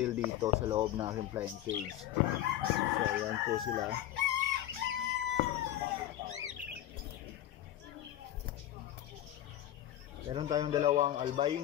dito sa loob ng aking flying cage. So ayan po sila. Meron tayong 2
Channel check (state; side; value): quieter; right; 12.8 dB